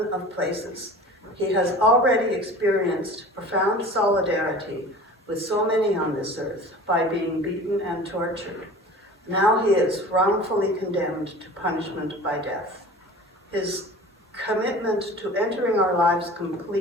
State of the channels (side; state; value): both; normal; correlation 0.40